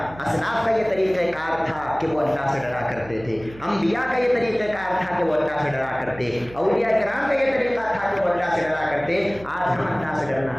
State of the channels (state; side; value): noise; right; hum, 19 dB below the sound